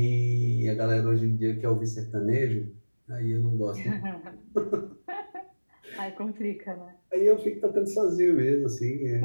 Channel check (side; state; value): both; inverted; correlation -1.00